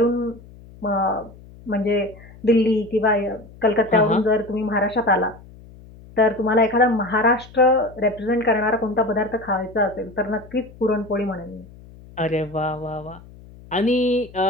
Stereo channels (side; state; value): left; noise; hum, 21 dB below the sound